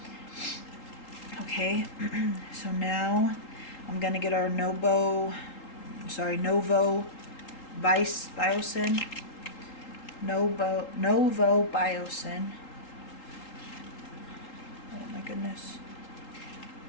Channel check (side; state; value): right; late; 3.8 ms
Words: Okay, so now I'm going to get our Novo Biocin. Novo Biocin. Oh my goodness.